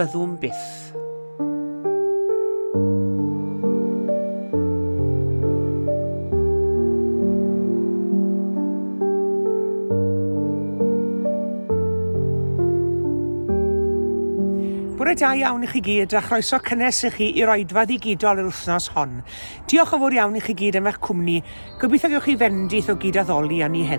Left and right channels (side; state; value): both; inverted; correlation -1.00